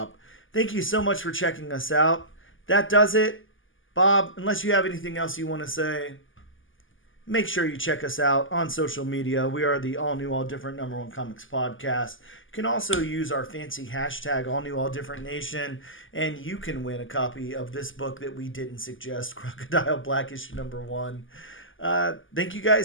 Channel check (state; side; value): late; right; 0.58 ms